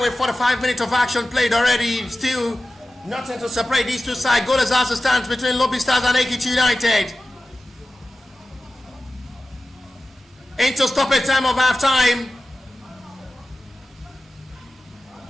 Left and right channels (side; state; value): both; normal; correlation 0.95